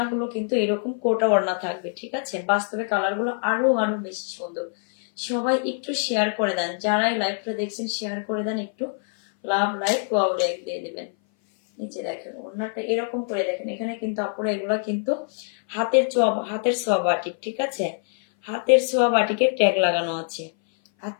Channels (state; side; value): silent; right; 58 dB below the other